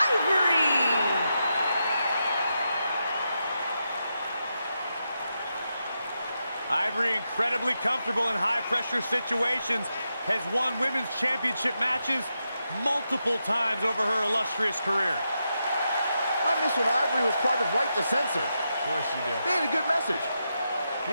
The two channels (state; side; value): inverted; both; correlation -0.86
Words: Ivory, incredibly comfortable in high-pressure situations, has won women's championship matches multiple times over her illustrious career. I miss when Ivory was part of Right to Censor. Of course you do. They had a good message.